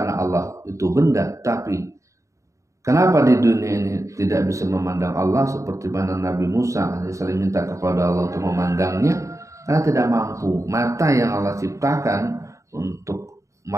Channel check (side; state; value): left; late; 0.15 ms